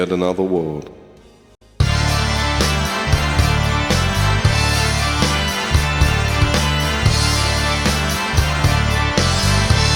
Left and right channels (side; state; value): both; identical; correlation 1.00